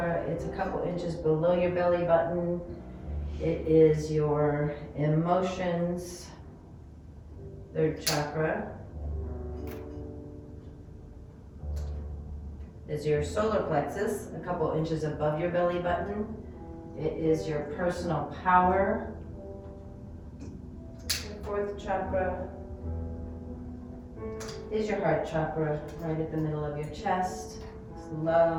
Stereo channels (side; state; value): both; identical; correlation 1.00